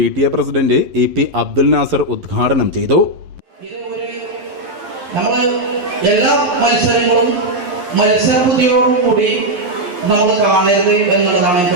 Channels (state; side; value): late; left; 11 ms